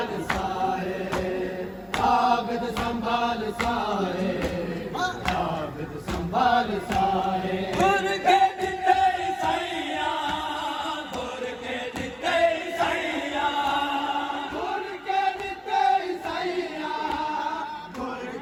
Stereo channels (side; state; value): both; identical; correlation 1.00